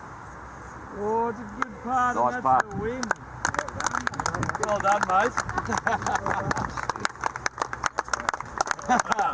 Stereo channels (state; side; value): identical; both; correlation 1.00